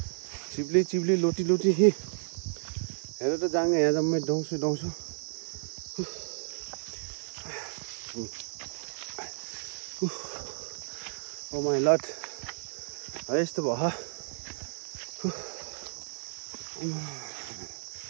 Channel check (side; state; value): left; silent; 56 dB below the other